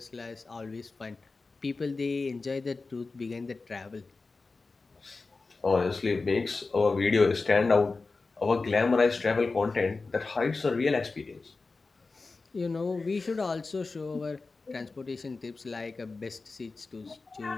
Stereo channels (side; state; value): right; quieter; 3.9 dB